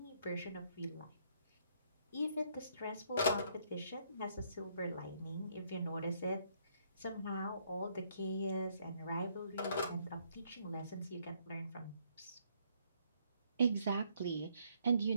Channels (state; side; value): inverted; both; correlation -0.70